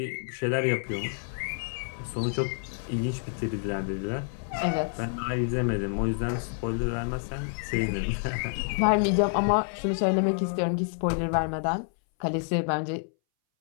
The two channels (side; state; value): right; silent; 59 dB below the other